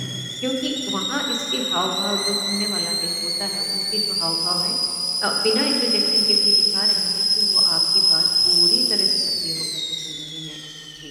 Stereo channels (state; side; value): identical; both; correlation 1.00